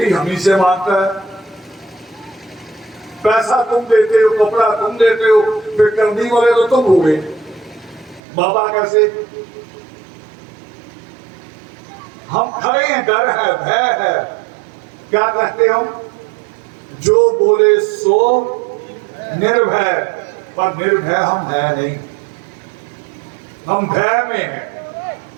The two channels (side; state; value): left; drops out; at 8.2 s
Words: हम ही से मांगता है, पैसा तुम देते हो, कपड़ा तुम देते हो, फिर करने वाले तो तुम हो गए, बाबा कैसे? हम खड़े हैं, डर है, भय है। क्या कहते हम? जो बोले सो निर्भय, पर निर्भय हम है नहीं, हम भय में हैं।